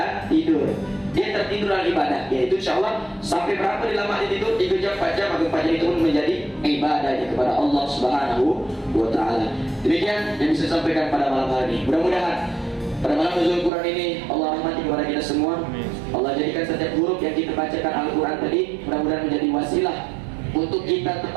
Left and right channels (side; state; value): left; drops out; at 13.7 s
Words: tidur. Dia tertidur dalam ibadah, yaitu insyaallah sampai berapa lama dia tidur? 3 jam, 4 jam, maka 4 jam itu pun menjadi ibadahnya kepada Allah Subhanahu wa Ta'ala. Demikian yang bisa sampaikan pada malam hari ini. Mudah-mudahan pada malam nuzul Quran ini Allah rahmati kepada kita semua. Allah jadikan setiap huruf yang kita bacakan Al-Quran tadi mudah-mudahan menjadi wasilah untuk kita